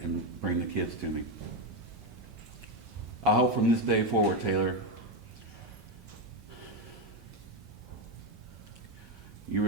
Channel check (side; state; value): both; normal; correlation 0.08